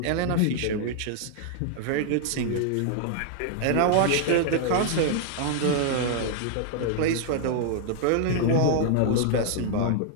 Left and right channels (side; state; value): both; different; correlation -0.01